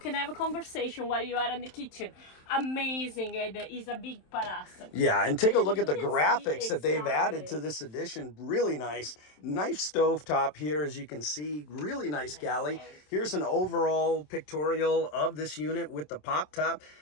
have a conversation while you are in the kitchen. Amazing, it is a big palace. Yeah, and take a look at the graphics that they've added to this edition. Really nice. Nice stove top here, as you can see. Really nice galley. Here's an overall pictorial of this unit with the pop top,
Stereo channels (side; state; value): right; late; 27 ms